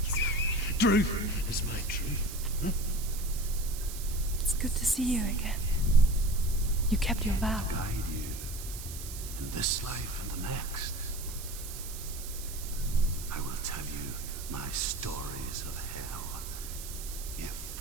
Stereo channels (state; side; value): noise; right; hiss, 11 dB below the sound